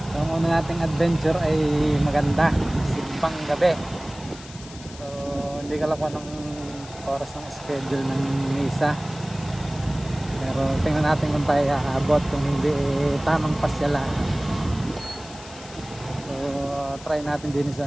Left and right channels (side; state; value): left; noise; hiss, 17 dB below the sound